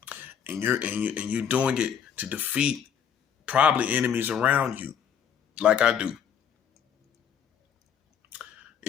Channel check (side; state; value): right; quieter; 8.2 dB